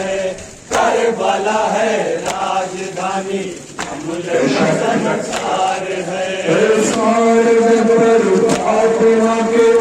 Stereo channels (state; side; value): identical; both; correlation 1.00